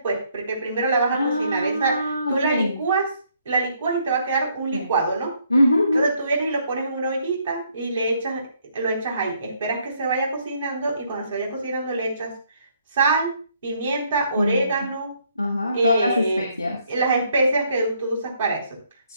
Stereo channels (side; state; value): both; inverted; correlation -0.70